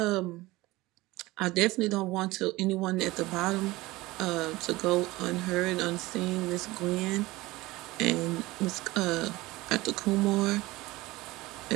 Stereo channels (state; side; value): quieter; left; 19.9 dB